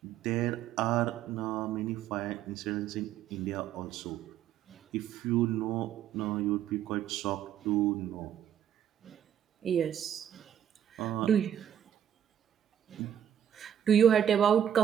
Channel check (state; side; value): quieter; left; 9.8 dB